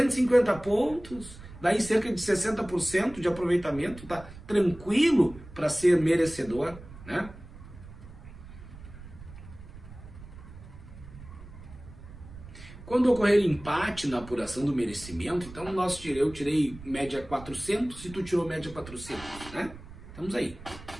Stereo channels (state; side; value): noise; right; rumble, 16 dB below the sound